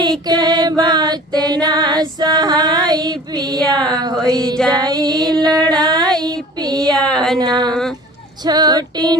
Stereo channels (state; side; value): normal; both; correlation 0.43